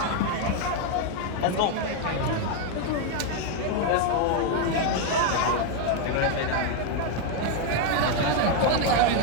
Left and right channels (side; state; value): both; different; correlation 0.01